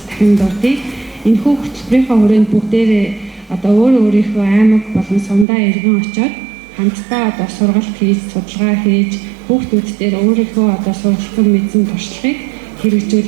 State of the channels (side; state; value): left; drops out; at 5.5 s